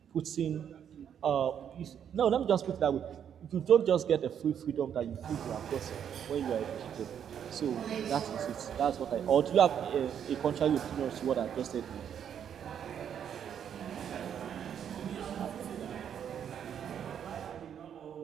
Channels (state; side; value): quieter; left; 8.7 dB